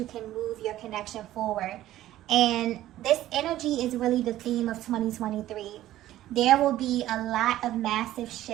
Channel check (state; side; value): quieter; left; 14.1 dB